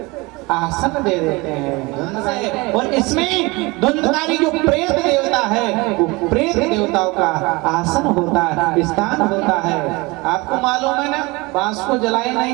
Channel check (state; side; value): quieter; left; 24.4 dB